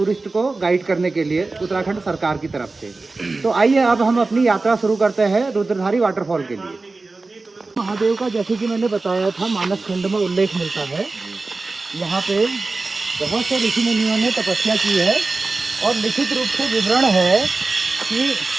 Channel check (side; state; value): left; quieter; 3.6 dB